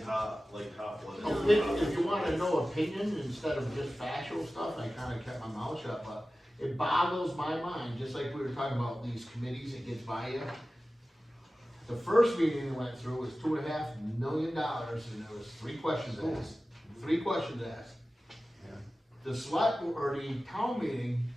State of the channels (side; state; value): both; normal; correlation 0.95